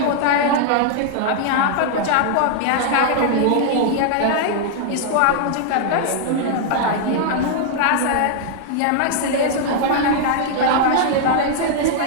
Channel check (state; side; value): different; both; correlation -0.01